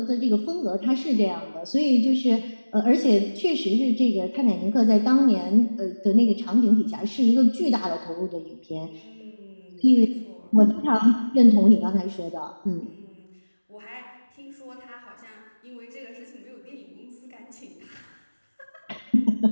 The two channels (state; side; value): inverted; both; correlation -1.00